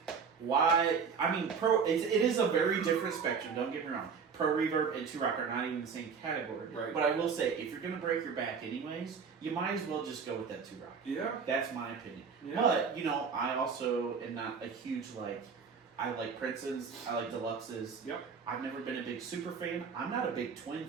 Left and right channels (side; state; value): left; quieter; 5.9 dB